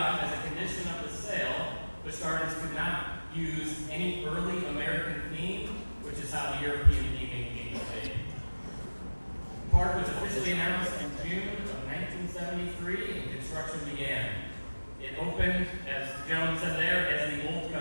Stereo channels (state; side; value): inverted; both; correlation -1.00